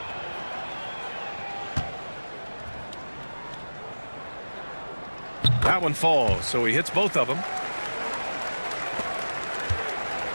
That one falls, so he hits both of them.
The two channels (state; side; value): inverted; both; correlation -1.00